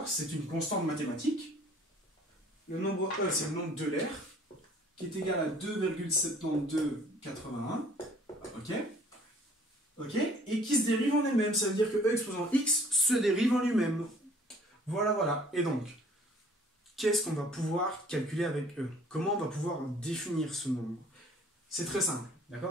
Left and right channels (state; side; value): normal; both; correlation 0.55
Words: C'est une constante mathématique. Le nombre E, c'est le nombre d'Euler, qui est égal à 2,7281. Ok? Ok, et qui se dérive en elle-même. Ça veut dire que E exposant x se dérive en lui-même. Voilà, voilà. Et donc, qu'est-ce qu'on va pouvoir calculer avec E? Comment on va pouvoir définir ce nombre? C'est très simple,